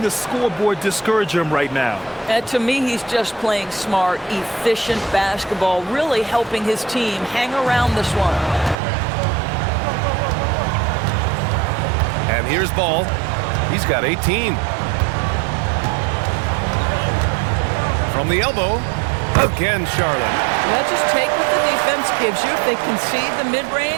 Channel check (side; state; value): left; drops out; at 8.8 s